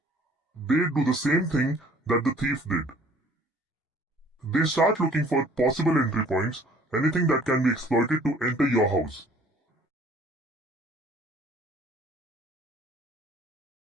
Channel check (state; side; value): normal; both; correlation 0.55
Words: They do the same thing that the thief did. They start looking for possible entry points, anything that can be exploited to enter your house.